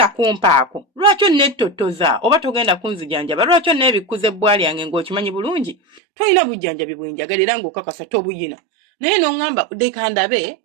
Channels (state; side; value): drops out; left; at 6.0 s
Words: kumpaako lwaki onnettotoza oba togenda kunzijanjaba lwaki onneebikkuza ebbwali yange ng'okimanyi bulungi tolina bujjanjabi bwenjagalira ng'okakasa tobuyina naye n'oŋŋamba dekandabe